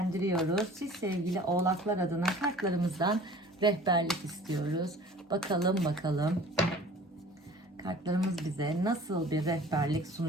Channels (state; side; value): normal; both; correlation 0.46